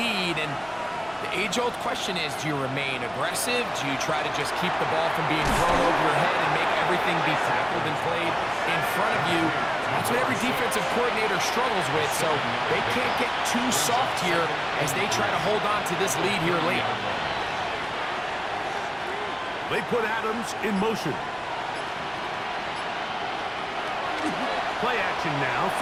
and the age-old question is, do you remain aggressive? Do you try to just keep the ball from being thrown over your head and make everything be tackled and played in front of you? That's what every defensive coordinator struggles with, so they can't get too soft here as they try to hold on to this lead here late. They put Adams in motion. Play action now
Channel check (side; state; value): both; identical; correlation 1.00